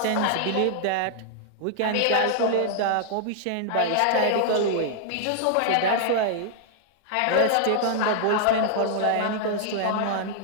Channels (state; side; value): different; both; correlation -0.01